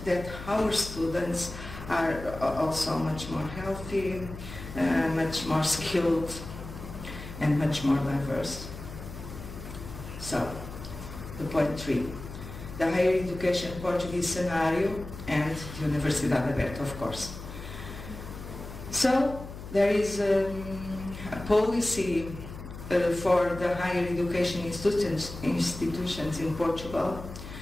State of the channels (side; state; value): left; noise; hum, 12 dB below the sound